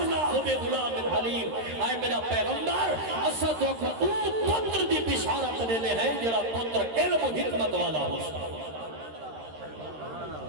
بغلام حلیم اے میرا پیغمبر اسد کو پتر دی بشارت دینے ہیں جڑا پتر علم و حکمت والا ہو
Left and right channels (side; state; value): left; late; 13 ms